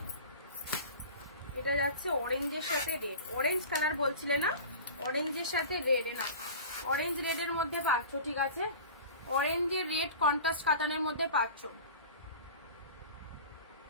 এটা যাচ্ছে অরেঞ্জের সাথে রেড, অরেঞ্জ কালার বলছিলে না, অরেঞ্জের সাথে রেড, না অরেঞ্জ রেডের মধ্যে পাচ্ছ, ঠিক আছে, অরেঞ্জের রেড কন্ট্রাস্ট কাতানের মধ্যে পাচ্ছ,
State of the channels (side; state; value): both; inverted; correlation -0.37